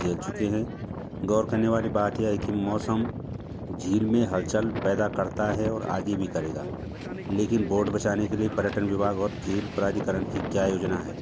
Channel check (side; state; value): both; identical; correlation 1.00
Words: चुके हैं। गौर करने वाली बात यह है कि मौसम झील में हलचल पैदा करता है और आगे भी करेगा, लेकिन बोट बचाने के लिए पर्यटन विभाग और झील प्राधिकरण की क्या योजना है,